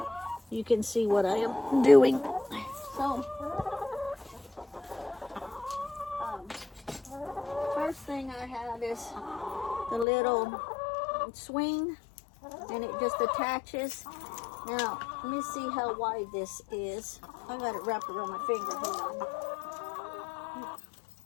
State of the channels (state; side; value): drops out; right; at 10.1 s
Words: you can see what I am doing. So first thing I have is the little swing, and it just attaches. Now let me see how wide this is. I got it wrapped around my finger. Hold on.